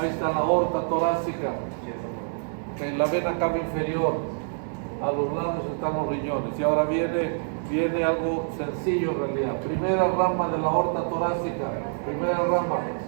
está la aorta torácica, okay, la vena cava inferior. A los lados están los riñones. Y ahora viene algo sencillo en realidad. Primera rama de la aorta torácica. Primera rama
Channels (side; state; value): left; silent; digital silence